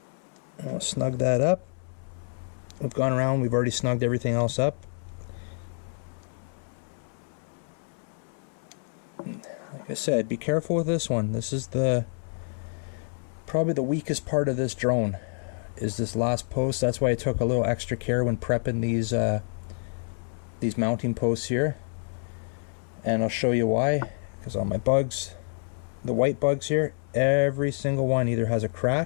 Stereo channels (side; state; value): right; silent; 59 dB below the other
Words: And we'll snug that up. We've gone around, we've already snugged everything else up. Like I said, be careful with this one. This is probably the weakest part of this drone, is this last post. That's why I took a little extra care when prepping these mounting posts here. And I'll show you why, because on my bugs, the white bugs here, every single one either has a